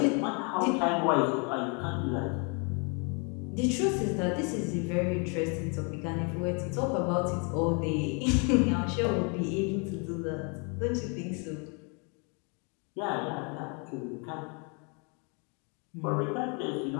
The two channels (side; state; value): right; quieter; 35.1 dB